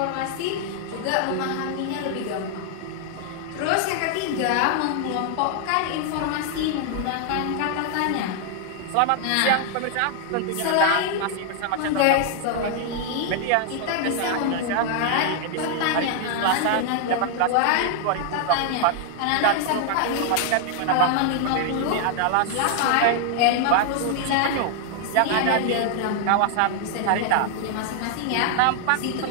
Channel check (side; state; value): both; different; correlation 0.00